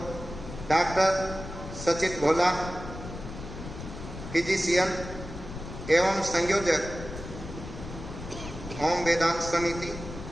डॉक्टर सचित भोला, फिजिशियन एवं संयोजक ओम वेदांत समिति,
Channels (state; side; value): noise; left; rumble, 10 dB below the sound